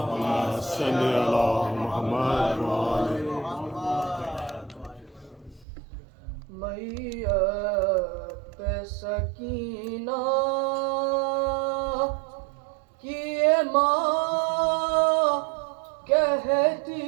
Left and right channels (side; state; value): left; drops out; at 5.7 s